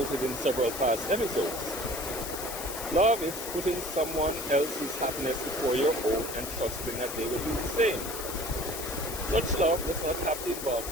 in several past episodes. Love is putting someone else's happiness before your own and trusting that they will do the same. Such love does not have to involve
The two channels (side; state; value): left; noise; hiss, 7 dB below the sound